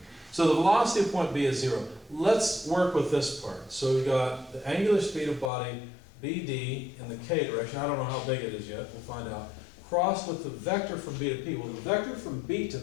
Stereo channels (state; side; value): drops out; right; at 5.5 s